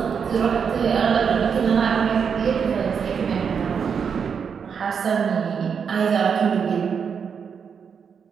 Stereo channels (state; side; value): quieter; left; 6.7 dB